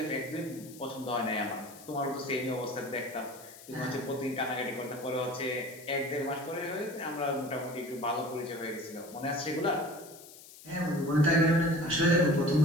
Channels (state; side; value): noise; left; hiss, 19 dB below the sound